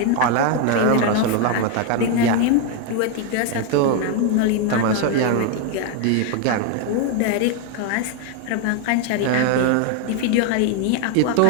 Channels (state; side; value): different; both; correlation 0.01